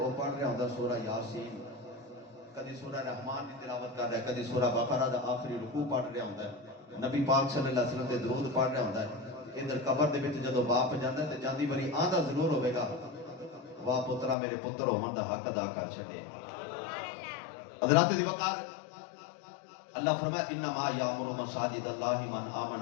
پڑھ رہا ہوندا سورہ یاسین، کدی سورہ رحمان دی تلاوت کر رہا ہے، کدی سورہ بقرہ دا آخری رکوع پڑھ رہا ہوندا ہے، نبی پاک صلی اللہ علیہ وسلم دے درود پڑھ رہا ہوندا ہے۔ ادھر قبر دے وچ جدو باپ جاندا ہے تے جاندی بری آندا ضرور ہوے گا، واہ پترا میرے پتر ہون دا حق ادا کر چھڈے۔ حضرات دی وقار اللہ فرمایا انما یامر مساجد اللہ من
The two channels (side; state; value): right; drops out; at 14.4 s